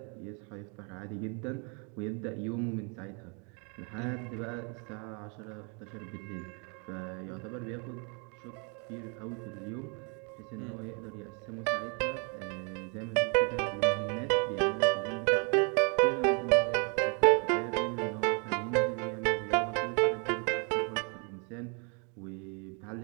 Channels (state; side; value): quieter; left; 36.0 dB